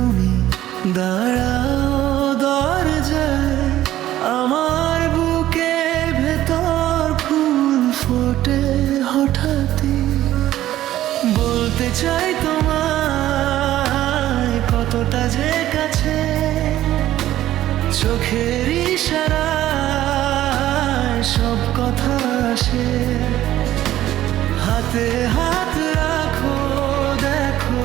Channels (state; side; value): quieter; left; 13.7 dB